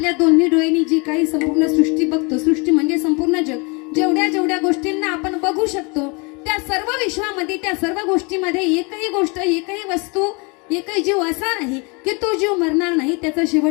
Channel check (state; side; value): quieter; right; 30.3 dB